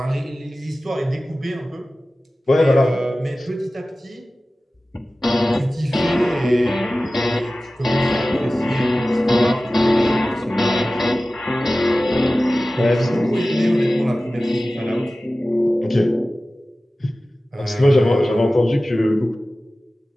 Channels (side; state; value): both; normal; correlation 0.96